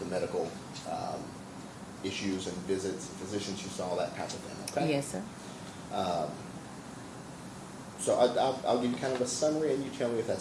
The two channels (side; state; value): both; identical; correlation 1.00